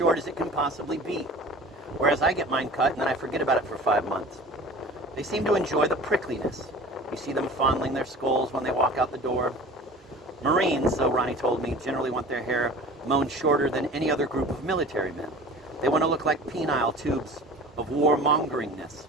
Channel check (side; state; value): both; normal; correlation 0.41